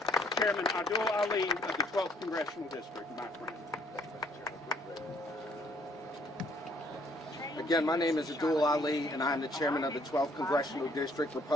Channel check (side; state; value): both; normal; correlation 0.64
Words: Chairman Abdul Ali of the 12th Congressional District, my friend. Again, my name is Abdul Ali, and I am the chairman of the 12th Congressional District